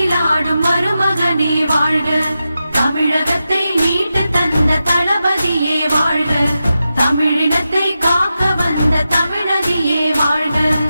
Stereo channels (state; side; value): inverted; both; correlation -0.90